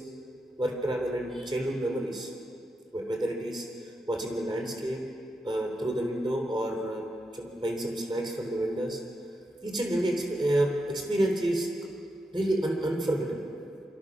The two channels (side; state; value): both; normal; correlation 0.86